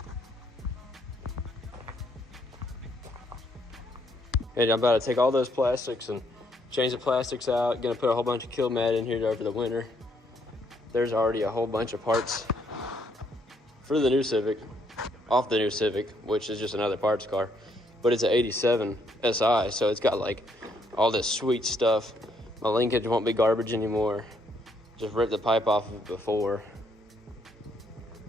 And I'm about to take all those plastics and change the plastics out. Gonna put a whole bunch of kill mat in here over the winter. There's already a whole bunch of parts for the new Civic, off the new Civic, which is just another parts car. But it's an 87 SI, so it's got like all this sweet stuff. My linkage won't be garbage anymore. Just ripped the pipe off of it before.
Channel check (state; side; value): normal; both; correlation 0.71